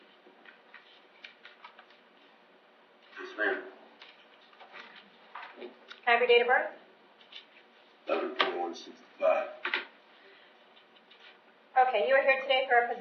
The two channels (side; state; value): both; identical; correlation 1.00